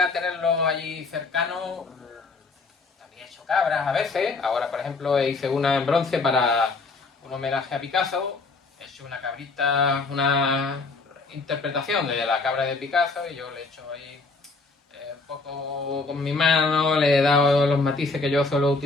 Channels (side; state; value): right; quieter; 3.8 dB